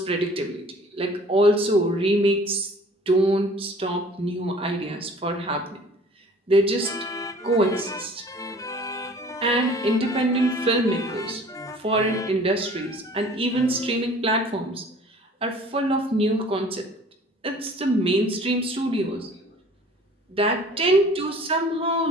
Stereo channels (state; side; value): normal; both; correlation 0.49